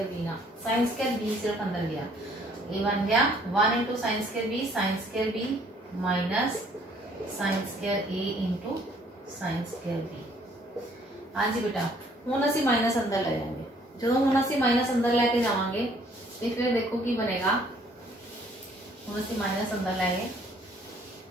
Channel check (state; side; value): normal; both; correlation 0.61